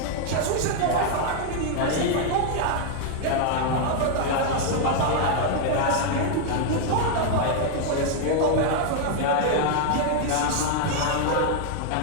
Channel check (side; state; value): both; different; correlation 0.00